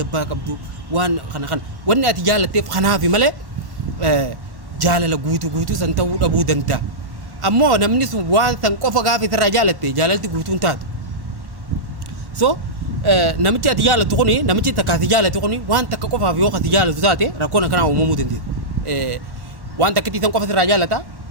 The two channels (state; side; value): late; left; 1.1 ms